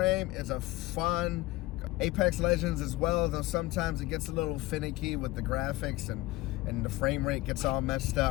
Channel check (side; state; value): right; quieter; 19.2 dB